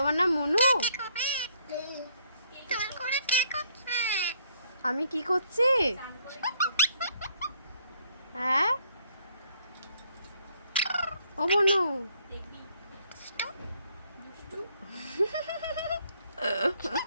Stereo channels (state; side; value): inverted; both; correlation -0.67